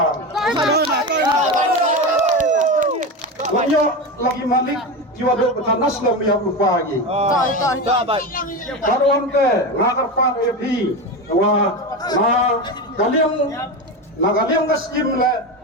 banyak lagi malik jiwa do betanas lam yang lupa lagi karuan ke ngakar pan epi wa na kalian ke skim le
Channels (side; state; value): both; normal; correlation 0.20